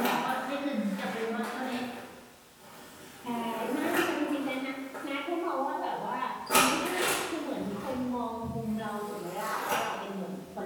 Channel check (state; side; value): identical; both; correlation 1.00